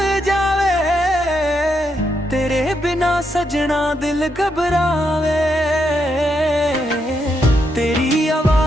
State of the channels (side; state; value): both; normal; correlation 0.80